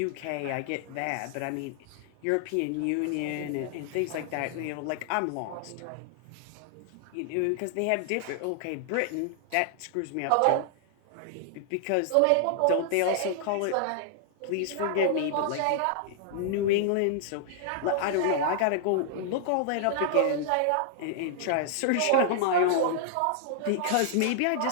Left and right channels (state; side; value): different; both; correlation -0.01